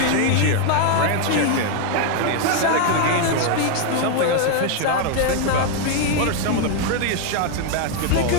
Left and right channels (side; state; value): both; different; correlation 0.01